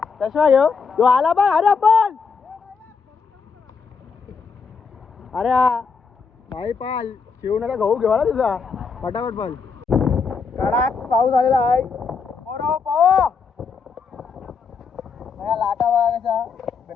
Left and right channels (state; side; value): quieter; right; 5.3 dB